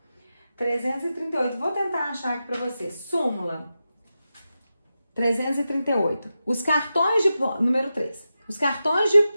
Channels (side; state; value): both; inverted; correlation -0.91